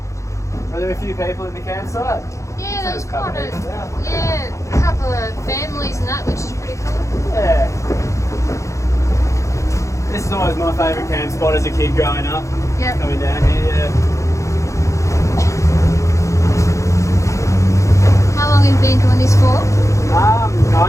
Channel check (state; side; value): late; right; 0.15 ms